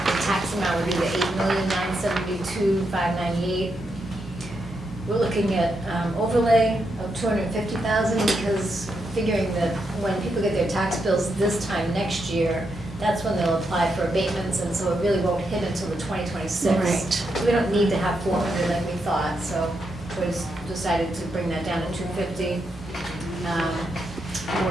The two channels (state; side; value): noise; left; hum, 25 dB below the sound